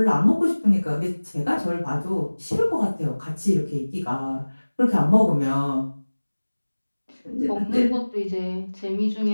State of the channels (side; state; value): both; inverted; correlation -1.00